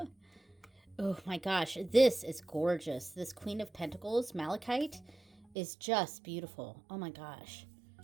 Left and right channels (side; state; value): left; drops out; at 5.5 s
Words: Oh my gosh, this is gorgeous. This Queen of Pentacles, Malachite, is just beautiful. Oh my gosh.